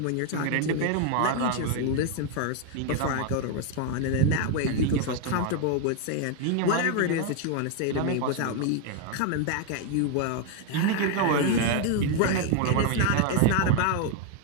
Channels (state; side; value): different; both; correlation 0.00